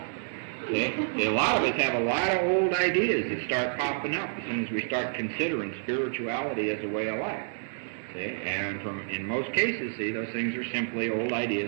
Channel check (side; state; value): left; silent; 59 dB below the other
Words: See? See? A lot of us have a lot of old ideas that start popping up as soon as we start considering spirituality as a way of life. See? And in most cases, see, those things are simply old